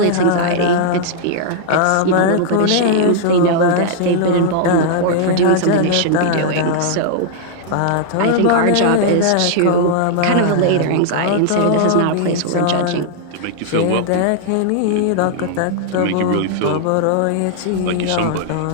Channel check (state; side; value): different; both; correlation -0.01